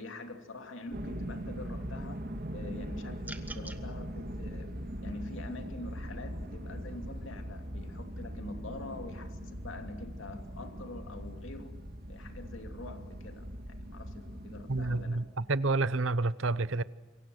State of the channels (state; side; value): normal; both; correlation 0.58